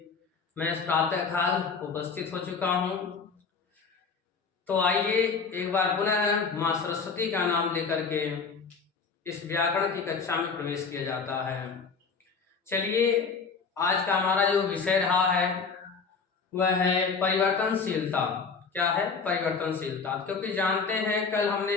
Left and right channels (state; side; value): quieter; right; 5.1 dB